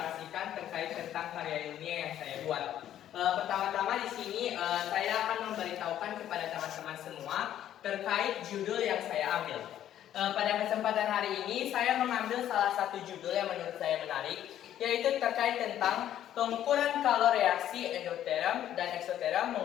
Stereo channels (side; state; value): right; quieter; 11.4 dB